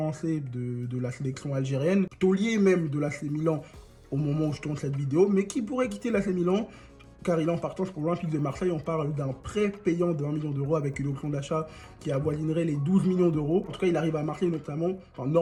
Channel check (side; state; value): both; identical; correlation 1.00